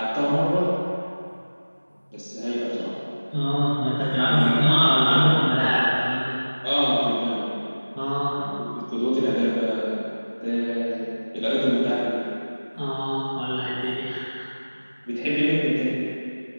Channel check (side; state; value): both; inverted; correlation -1.00